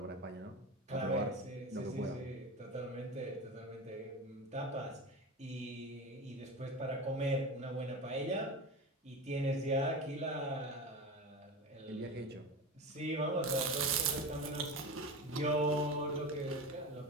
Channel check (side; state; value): both; normal; correlation 0.26